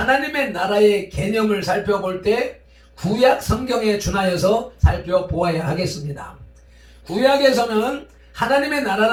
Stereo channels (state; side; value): identical; both; correlation 1.00